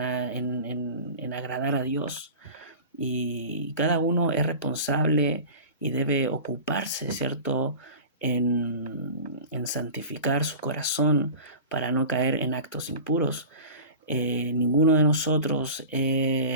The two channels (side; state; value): both; inverted; correlation -0.35